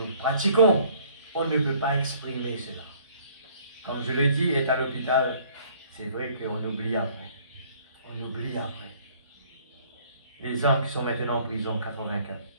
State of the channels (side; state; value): both; inverted; correlation -0.57